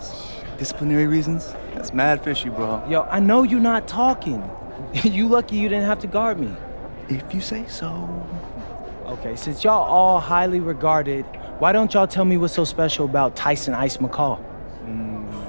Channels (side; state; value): both; inverted; correlation -1.00